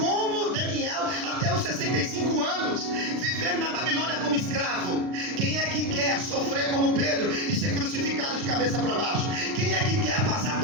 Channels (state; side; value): late; left; 39 ms